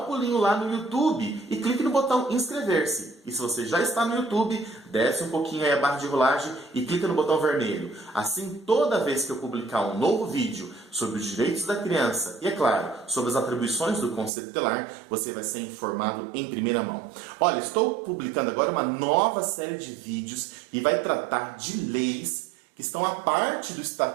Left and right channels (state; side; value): drops out; left; at 14.3 s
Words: pulinho lá no YouTube e clique no botão inscrever-se. E se você já está no YouTube, desce um pouquinho aí a barra de rolagem e clica no botão vermelho. Assim, toda vez que eu publicar um novo vídeo sobre os direitos da criança e, é claro, sobre as atribuições do Conselho Tutelar, você vai ser informado em primeira mão. Olha, estou publicando agora uma nova série de vídeos que vai tratar de leis que estão a parte do